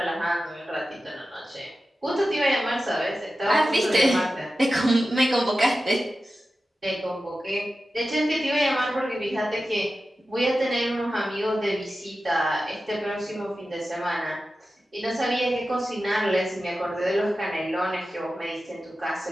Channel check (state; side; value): normal; both; correlation 0.93